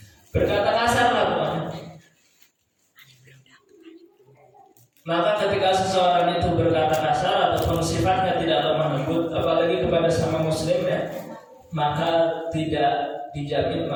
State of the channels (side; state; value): both; identical; correlation 1.00